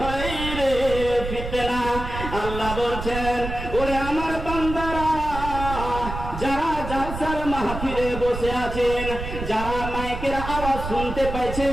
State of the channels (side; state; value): right; noise; rumble, 7 dB below the sound